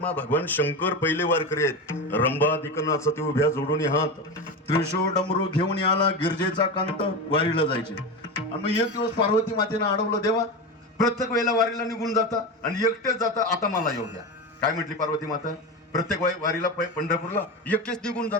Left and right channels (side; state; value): both; normal; correlation 0.21